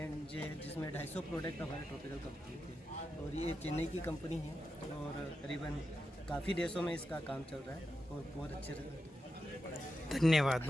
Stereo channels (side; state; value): both; normal; correlation 0.88